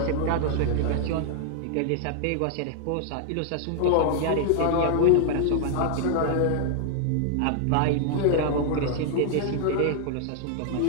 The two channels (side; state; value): both; different; correlation 0.00